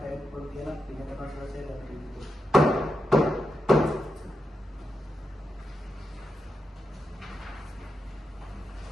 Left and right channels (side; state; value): both; normal; correlation 0.86